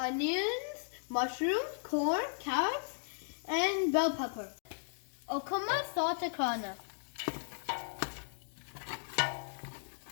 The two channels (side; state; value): right; silent; digital silence